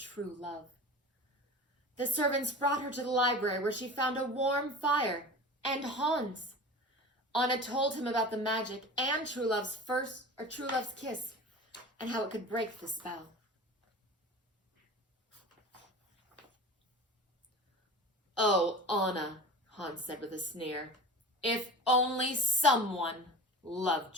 love. The servants brought her to the library where she found a warm fire and Hans. Anna told him about the magic and true love's kiss and how it could break the spell. "Oh, Anna," Hans said with a sneer, "if only someone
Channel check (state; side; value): normal; both; correlation 0.35